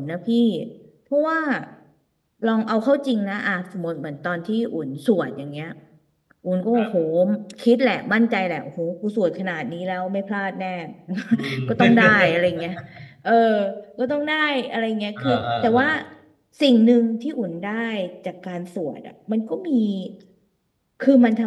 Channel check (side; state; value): both; identical; correlation 1.00